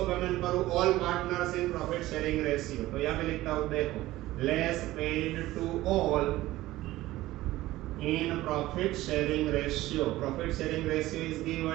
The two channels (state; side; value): quieter; left; 16.7 dB